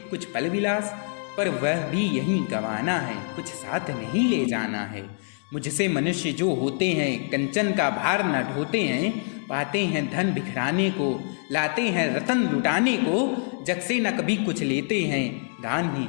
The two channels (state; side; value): silent; right; 56 dB below the other